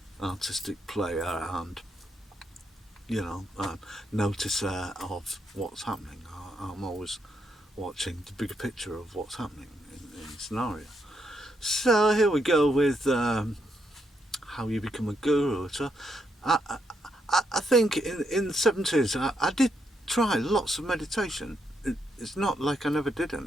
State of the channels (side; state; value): both; normal; correlation 0.79